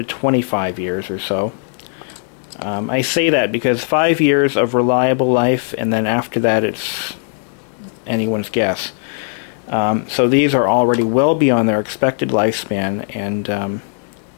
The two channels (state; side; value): silent; right; digital silence